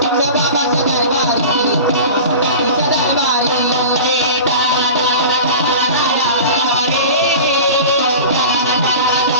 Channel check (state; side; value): inverted; both; correlation -0.35